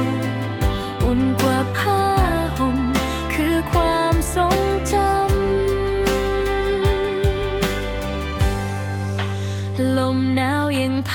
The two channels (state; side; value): identical; both; correlation 1.00